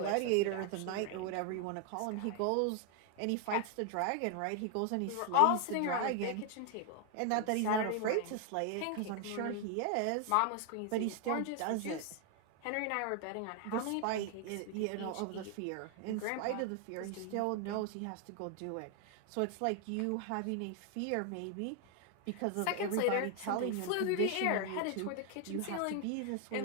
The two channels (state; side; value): different; both; correlation 0.00